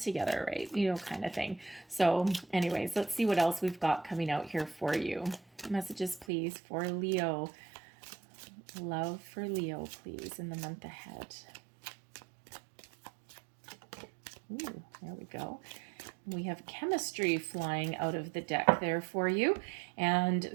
right? You know, kind of thing. So anyways, let's see what else we've got coming out here for you. Messages, please, for Leo. Love for Leo, please, in the month ahead. Ooh, there we go. We have chemistry flying out of the deck there for you. And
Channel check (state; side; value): drops out; left; at 6.2 s